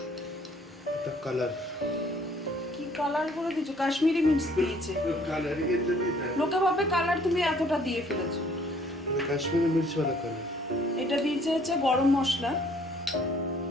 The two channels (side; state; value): both; normal; correlation 0.59